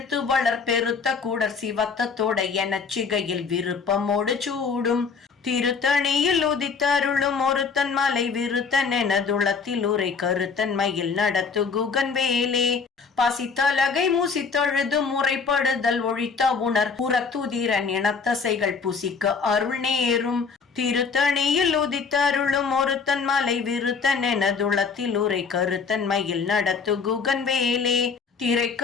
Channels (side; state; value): right; quieter; 5.3 dB